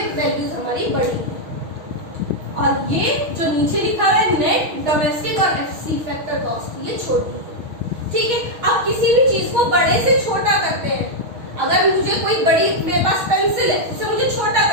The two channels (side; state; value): left; late; 6.4 ms